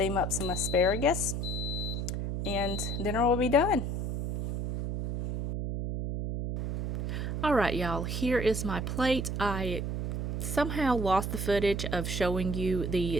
up some asparagus, and dinner will be done. Alright, y'all, here is my plate. I somehow lost the footage of showing you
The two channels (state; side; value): noise; right; hum, 2 dB below the sound